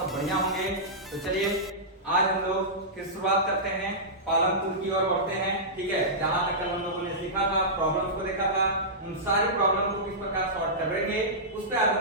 सब बढ़िया होंगे। तो चलिए आज हम लोग फिर शुरुआत करते हैं, पालनपुर की ओर बढ़ते हैं। ठीक है, जहां तक कल हम लोगों ने सीखा था, प्रॉब्लम्स को देखा था, उन सारी प्रॉब्लम को किस प्रकार सॉल्व करेंगे उस पर आज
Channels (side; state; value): both; normal; correlation -0.15